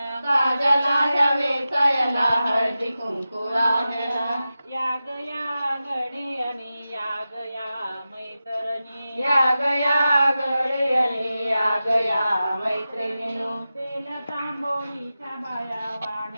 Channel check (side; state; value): both; inverted; correlation -0.93